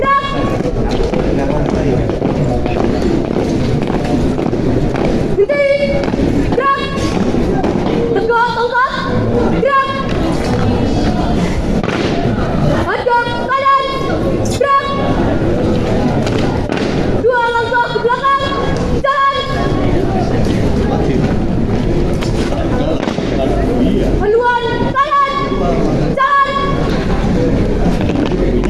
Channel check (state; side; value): identical; both; correlation 1.00